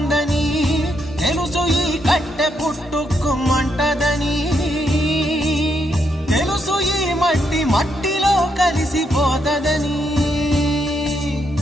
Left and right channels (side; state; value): both; normal; correlation 0.78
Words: తెలుసు ఈ కట్టె పుట్టుకుమంటదని, తెలుసు ఈ మట్టి మట్టిలో కలిసిపోతదని.